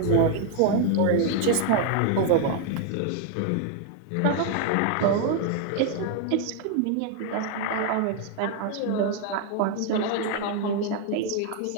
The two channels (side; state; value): both; different; correlation 0.01